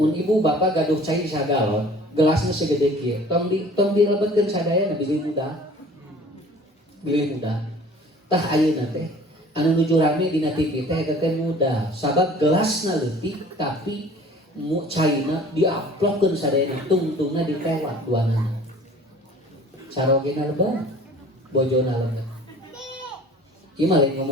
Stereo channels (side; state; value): both; normal; correlation 0.48